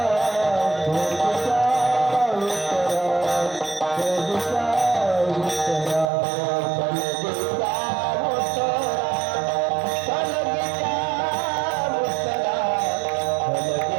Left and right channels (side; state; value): left; drops out; at 6.1 s